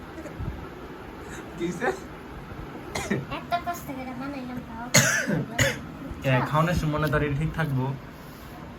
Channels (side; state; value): both; identical; correlation 1.00